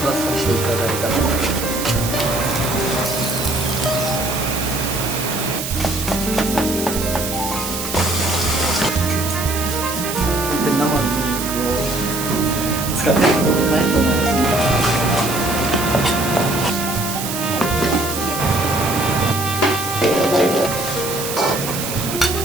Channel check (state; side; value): noise; right; hiss, 6 dB below the sound